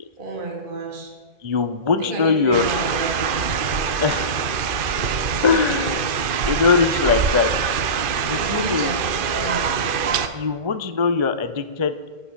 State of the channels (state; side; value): late; left; 2.4 ms